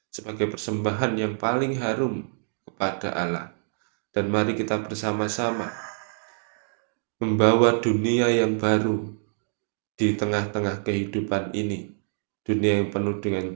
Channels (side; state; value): left; silent; 61 dB below the other